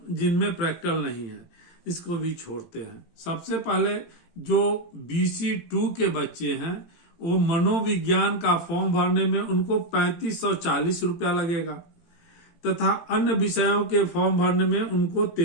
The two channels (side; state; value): right; late; 18 ms